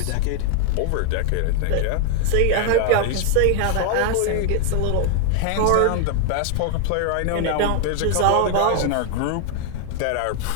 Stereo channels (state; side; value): different; both; correlation 0.00